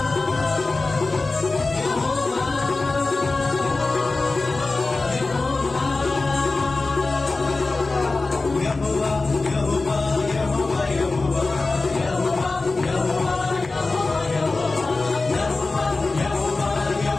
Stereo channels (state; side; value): quieter; right; 3.5 dB